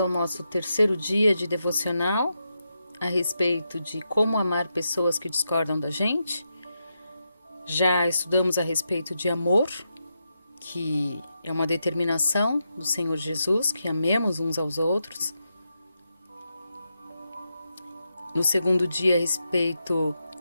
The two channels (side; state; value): both; inverted; correlation -0.85